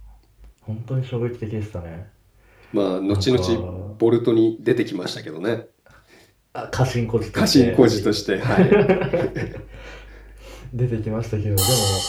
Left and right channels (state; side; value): identical; both; correlation 1.00